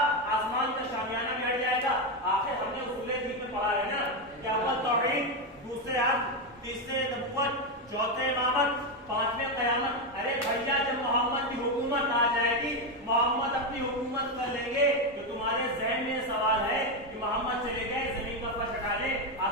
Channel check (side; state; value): both; normal; correlation 0.08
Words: آسمان کا شامیانہ بھی ہٹ جائے گا۔ آخر ہم نے اصول دین میں پڑھا ہے نا کہ اول توحید، دوسرے عدل، تیسرے نبوت، چوتھے امامت، پانچویں قیامت۔ ارے بھیا، جب محمد کی حکومت آ جائے گی، محمد اپنی حکومت کر لیں گے، تو تمہارے ذہن میں سوال ہے کہ محمد چلے گئے، زمین کا فرش ہٹا لیں،